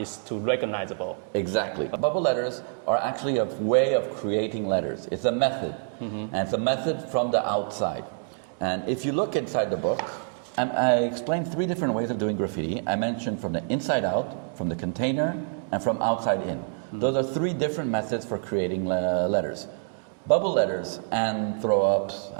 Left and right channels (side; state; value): left; silent; digital silence